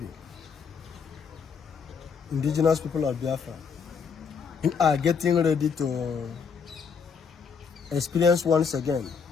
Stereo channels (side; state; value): right; quieter; 6.1 dB